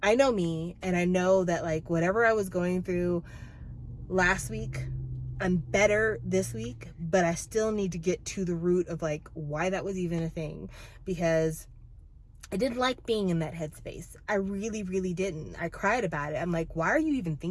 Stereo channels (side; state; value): both; identical; correlation 1.00